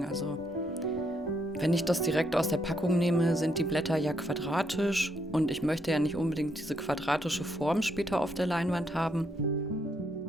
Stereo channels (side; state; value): both; normal; correlation 0.75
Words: Also wenn ich das direkt aus der Packung nehme, sind die Blätter ja quadratisch und ich möchte ja nicht unbedingt diese quadratische Form später auf der Leinwand haben.